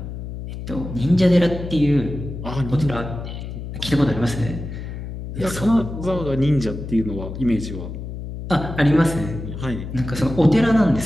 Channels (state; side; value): noise; left; hum, 8 dB below the sound